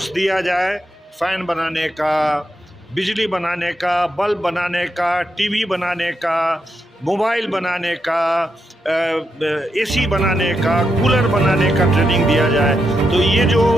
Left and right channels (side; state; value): both; normal; correlation 0.83